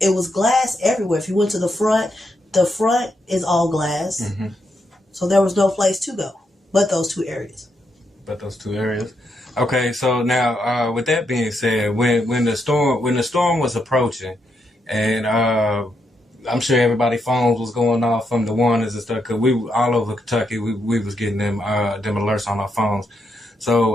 was glass everywhere. If you went to the front is all glass. Mm-hmm. So there was no place to go but those 2 areas. Okay, so now with that being said, when the storm was approaching, and I'm sure everybody's phones was going off from the warnings and stuff, because we all over Kentucky, we was getting them alerts on our phones.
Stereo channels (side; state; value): both; normal; correlation 0.81